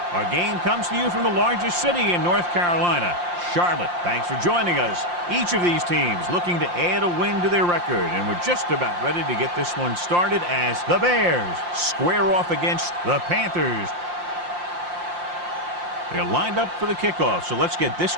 Our game comes to you from the largest city in North Carolina, Charlotte. Thanks for joining us. Each of these teams looking to add a win to their record, and we're just about ready to get this one started as the Bears square off against the Panthers. They're lined up for the kickoff, so let's get this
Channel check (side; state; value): left; late; 5.7 ms